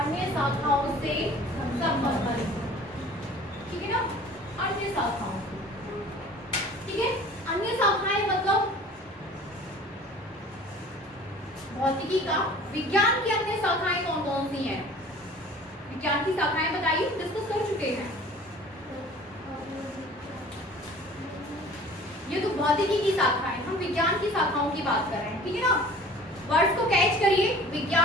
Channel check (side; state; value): both; normal; correlation 0.46